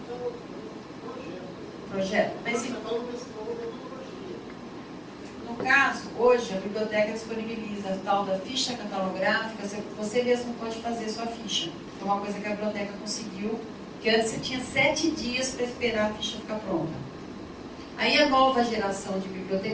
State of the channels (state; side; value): identical; both; correlation 1.00